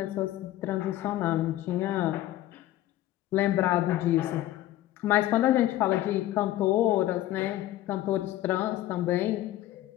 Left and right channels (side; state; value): right; quieter; 14.6 dB